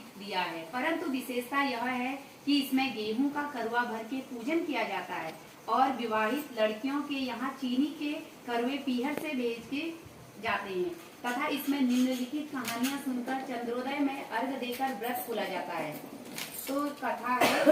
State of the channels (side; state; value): both; identical; correlation 1.00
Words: दिया है, परंतु विशेषता यह है कि इसमें गेहूं का करवा भर के पूजन किया जाता है और विवाहित लड़कियों के यहाँ चीनी के करवे पीहर से भेज के जाते हैं तथा इसमें निम्नलिखित कहानियां सुनकर चंद्रोदय में अर्घ देकर व्रत खोला जाता है। तो कथा